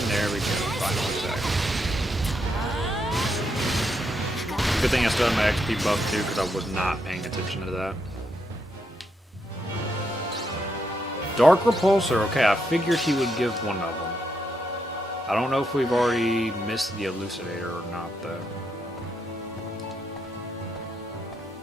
there we go, final attack. Good thing I still have my XP buff too, because I was not paying attention to that. Dark Repulsor, okay, I figured he would give one of them. I don't know if we've already missed the Elucidator or not, though.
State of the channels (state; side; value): normal; both; correlation 0.80